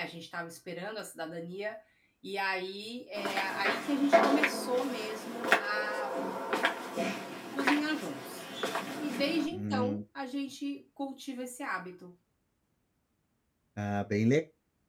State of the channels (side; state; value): both; identical; correlation 1.00